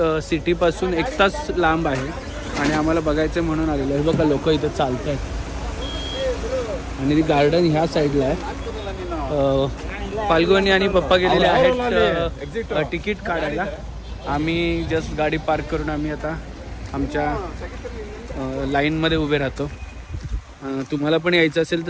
सिटीपासून 1 तास लांब आहे. आणि आम्हाला बघायचं म्हणून आलेलं आहे. बघा लोक इथं चालत आहेत आणि ती गार्डन ह्या साईडला आहे. फाल्गुनी आणि पप्पा गेलेले आहेत तिकीट काढायला. आम्ही जस्ट गाडी पार्क करून आम्ही आता आमच्या लाईनमध्ये उभे राहतो. तुम्हाला पण यायचं असेल तर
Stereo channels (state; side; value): identical; both; correlation 1.00